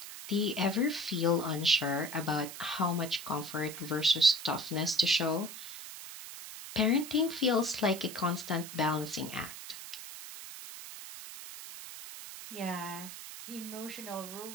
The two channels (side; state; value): right; noise; hiss, 11 dB below the sound